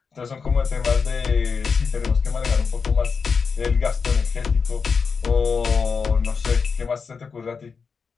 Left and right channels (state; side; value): quieter; right; 5.4 dB